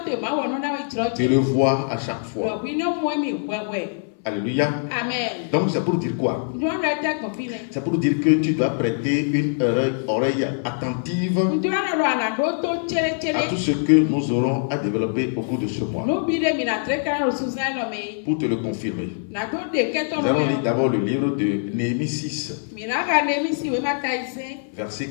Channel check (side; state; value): right; silent; 60 dB below the other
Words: de le voir à chaque fois. Alléluia. Amen. Donc c'est pour dire quoi? C'est pour dire que tu dois prêter une oreille attentive à tout ce que nous aurons à développer au cours de ce mois. Pour te le confirmer, nous allons lire d'abord le livre de Néhémie 6, verset